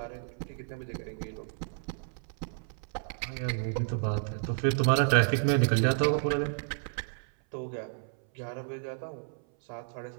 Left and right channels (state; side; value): silent; left; 57 dB below the other